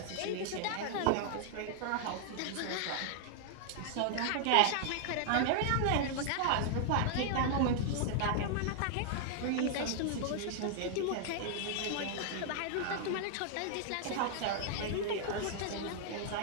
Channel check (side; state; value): both; different; correlation 0.00